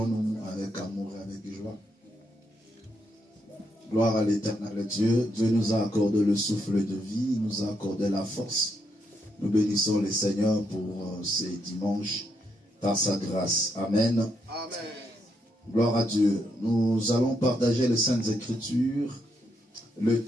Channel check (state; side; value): normal; both; correlation 0.79